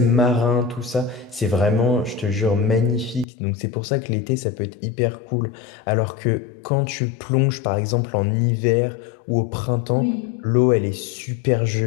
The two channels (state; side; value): drops out; right; at 3.2 s